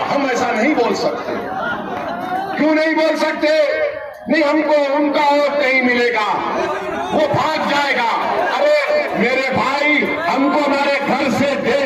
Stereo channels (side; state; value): both; identical; correlation 1.00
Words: हम ऐसा नहीं बोल सकते। क्यों नहीं बोल सकते? नहीं, हमको उनका वोट नहीं मिलेगा, वो भाग जाएगा। अरे मेरे भाई, हमको हमारे घर से